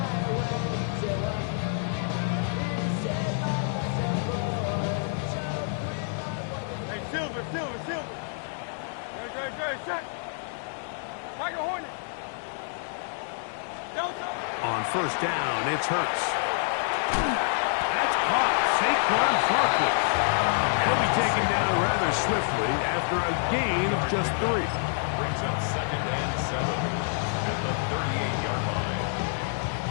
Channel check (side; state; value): right; silent; 60 dB below the other